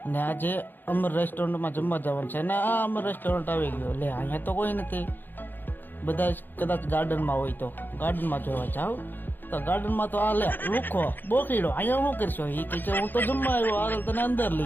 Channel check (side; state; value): right; late; 0.092 ms